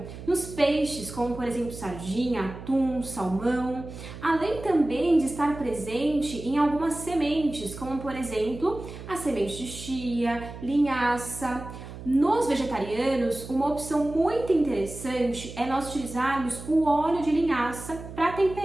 nos peixes, como por exemplo sardinha, atum, salmão, além também de estar presente em algumas sementes, como por exemplo a semente de chia, linhaça. Nos vegetarianos, uma opção muito interessante é nós utilizarmos o óleo de linhaça para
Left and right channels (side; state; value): right; noise; hum, 12 dB below the sound